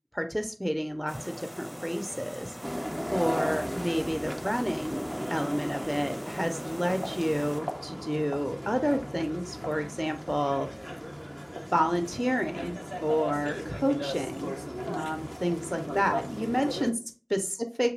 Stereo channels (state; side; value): identical; both; correlation 1.00